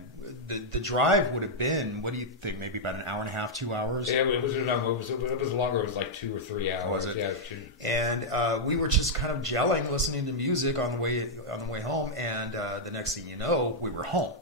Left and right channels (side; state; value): both; normal; correlation -0.04